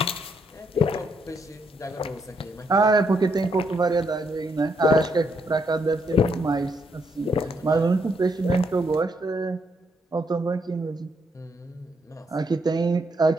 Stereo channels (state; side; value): normal; both; correlation 0.75